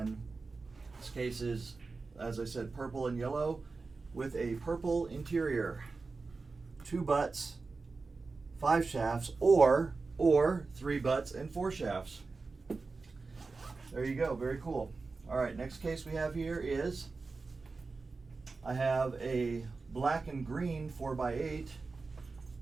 this case is, as I said, purple and yellow with a purple interior. 2 butts, 5 shafts, or 3 butts and 4 shafts. There you go, very cool. All right, next case we have here is, I have a black and green 4x8.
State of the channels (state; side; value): quieter; left; 4.0 dB